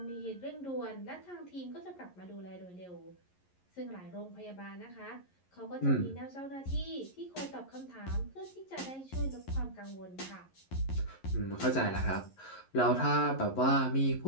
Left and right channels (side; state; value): right; late; 11 ms